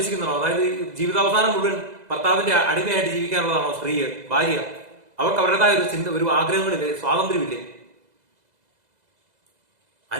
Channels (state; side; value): late; left; 2.0 ms